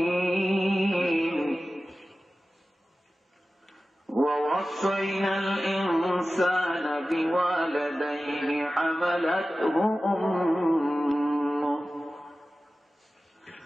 ووصينا الإنسان بوالديه حملته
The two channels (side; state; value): both; normal; correlation 0.95